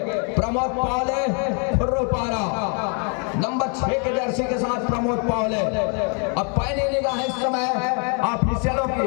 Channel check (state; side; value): quieter; right; 39.2 dB